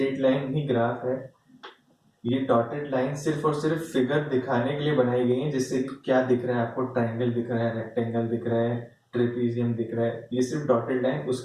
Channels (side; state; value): both; identical; correlation 1.00